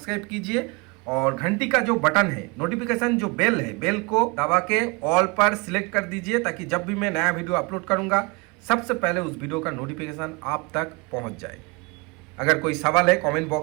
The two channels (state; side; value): quieter; left; 27.8 dB